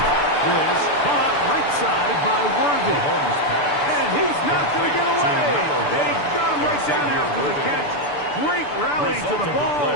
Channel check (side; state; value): right; late; 6.8 ms